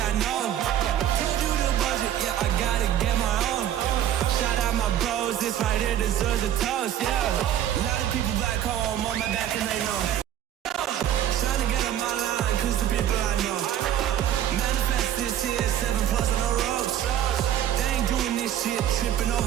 know. Told you the budget, I gotta get my own. Shout out my bros, this right here deserves a toast, A lot of people back home on my back and they know. Trying to get on my line, cause the people I know. Manifest this year, 7+ on the ropes. They ain't doing this shit, tripping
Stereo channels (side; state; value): left; quieter; 11.1 dB